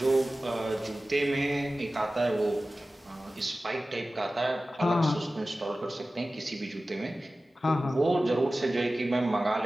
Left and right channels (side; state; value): both; normal; correlation 0.96